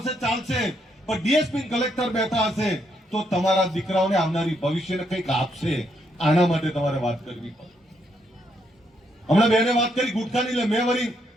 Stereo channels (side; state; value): both; normal; correlation 0.75